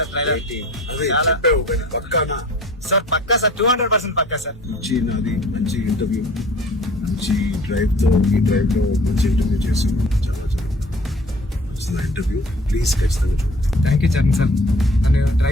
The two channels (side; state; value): both; normal; correlation 0.49